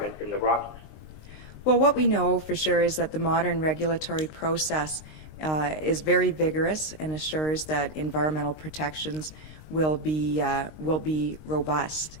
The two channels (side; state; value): right; late; 19 ms